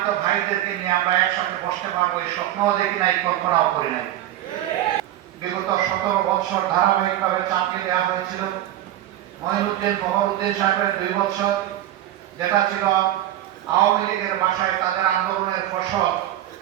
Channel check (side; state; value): left; quieter; 13.3 dB